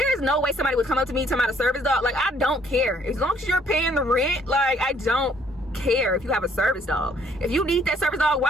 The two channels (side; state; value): both; normal; correlation 0.63